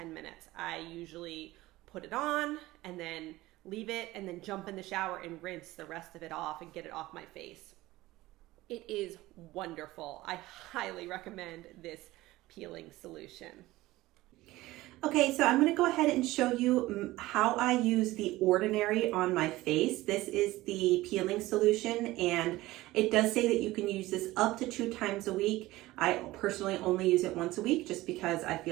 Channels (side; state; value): left; quieter; 18.0 dB